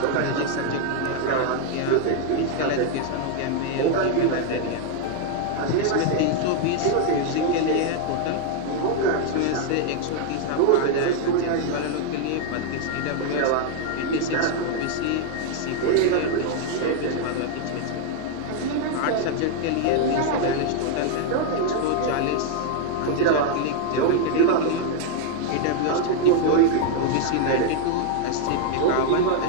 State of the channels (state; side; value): different; both; correlation 0.00